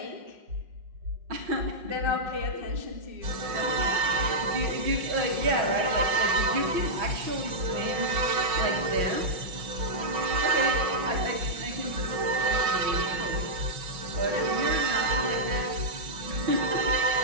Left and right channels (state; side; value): late; left; 5.5 ms